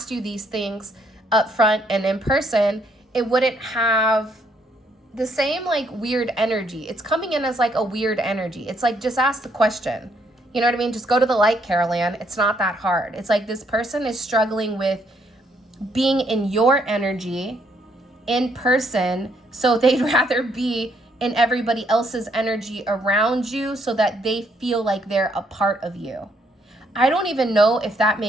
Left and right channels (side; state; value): both; normal; correlation 0.71